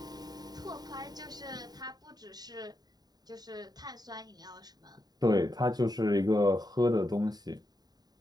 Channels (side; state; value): left; late; 0.19 ms